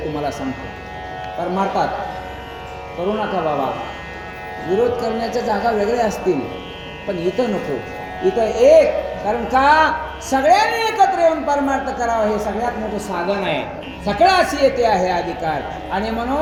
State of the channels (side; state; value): both; identical; correlation 1.00